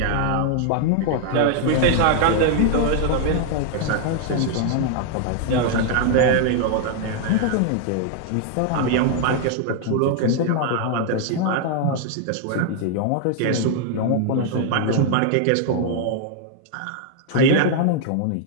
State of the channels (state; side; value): different; both; correlation 0.00